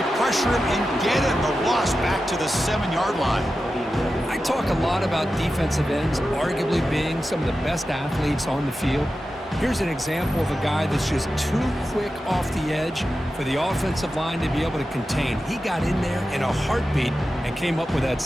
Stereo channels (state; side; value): normal; both; correlation 0.92